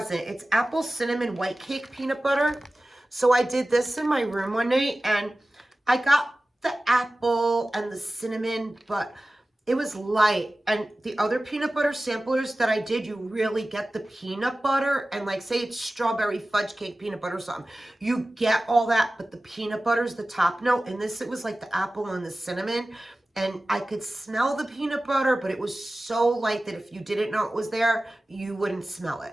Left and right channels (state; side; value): normal; both; correlation 0.96